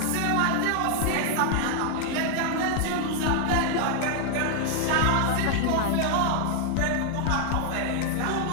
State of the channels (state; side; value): different; both; correlation 0.00